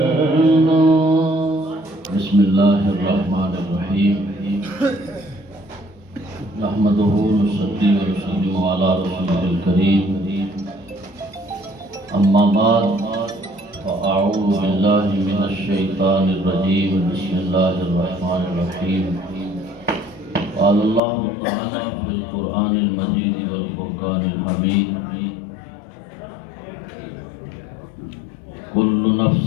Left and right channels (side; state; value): right; drops out; at 21.0 s